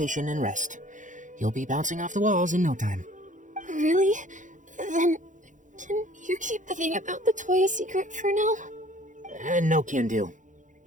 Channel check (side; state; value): left; late; 0.37 ms